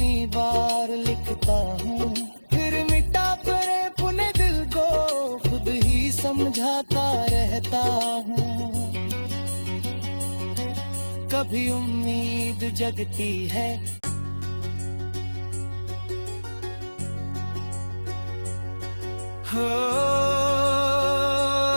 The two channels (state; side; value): inverted; both; correlation -1.00